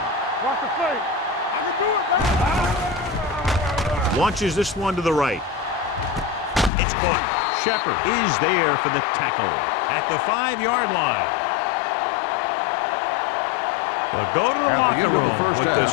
Watch the fake. I can do it, baby. Launches this one to the right. It's caught. Shepard is there for the tackle at the 5-yard line. They'll go to the locker room with the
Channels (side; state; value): right; drops out; at 6.7 s